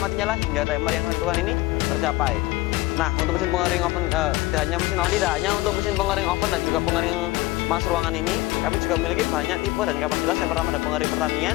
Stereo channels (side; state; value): right; quieter; 19.7 dB